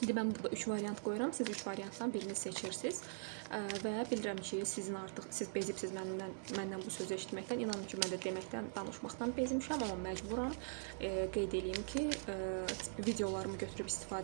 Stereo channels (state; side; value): silent; left; digital silence